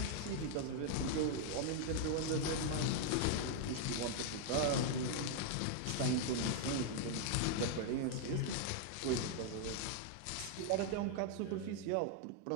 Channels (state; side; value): different; both; correlation -0.01